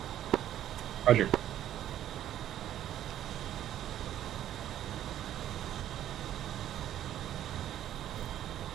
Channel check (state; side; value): quieter; left; 11.7 dB